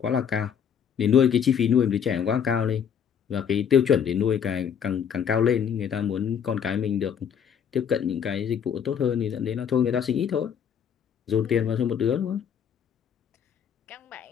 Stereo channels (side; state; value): right; quieter; 7.9 dB